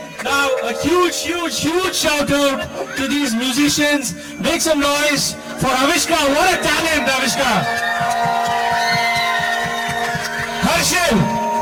now a huge shout out to these musicians. Make some noise for Avishka. What a talent, Avishka.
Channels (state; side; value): identical; both; correlation 1.00